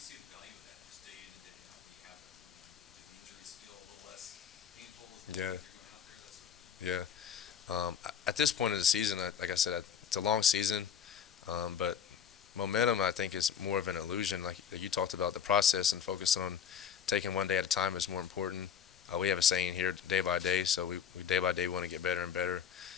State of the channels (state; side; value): quieter; right; 7.9 dB